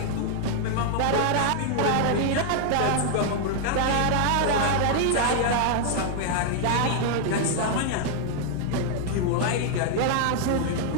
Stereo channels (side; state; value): both; different; correlation 0.00